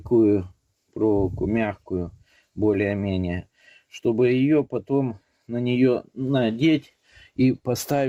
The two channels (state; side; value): identical; both; correlation 1.00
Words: проволоку мягкую, более-менее. Чтобы ее потом на нее надеть и